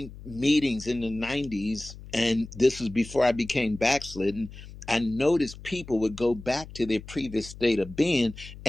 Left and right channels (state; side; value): noise; left; hum, 15 dB below the sound